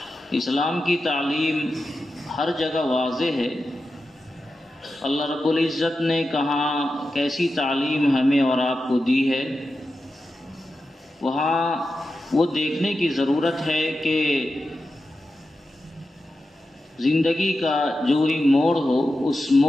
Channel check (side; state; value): both; normal; correlation 0.91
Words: اسلام کی تعلیم ہر جگہ واضح ہے۔ اللہ رب العزت نے کہاں کیسی تعلیم ہمیں اور آپ کو دی ہے، وہاں وہ دیکھنے کی ضرورت ہے کہ زندگی کا جو ہی موڑ ہو، اس